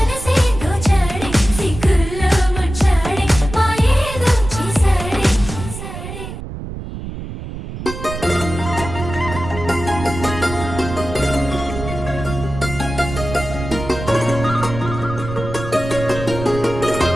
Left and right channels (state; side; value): noise; right; rumble, 9 dB below the sound